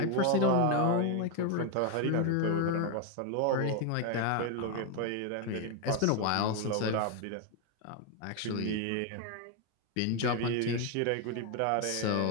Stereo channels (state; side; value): different; both; correlation 0.01